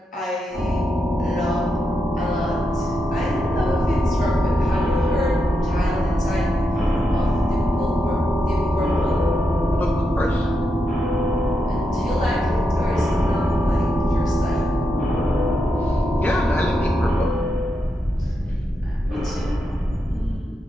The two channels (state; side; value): normal; both; correlation 0.85